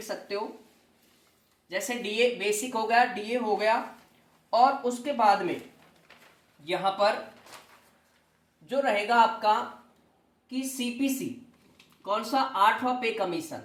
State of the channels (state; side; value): identical; both; correlation 1.00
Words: सकते हो, जैसे डीए बेसिक हो गया, डीए हो गया, और उसके बाद में यहां पर जो रहेगा आपका कि सीपीसी, कौन सा 8वां पे कमीशन,